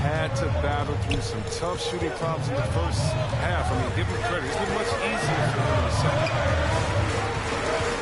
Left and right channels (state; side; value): identical; both; correlation 1.00